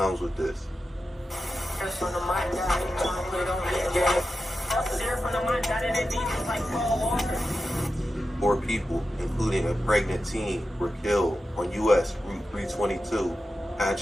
with this. 4 people, including a pregnant teen, were killed on U.S. Route 322,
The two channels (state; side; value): normal; both; correlation 0.91